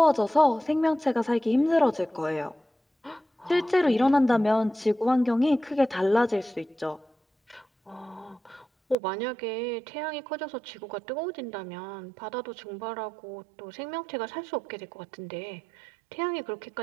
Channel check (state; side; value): drops out; left; at 9.0 s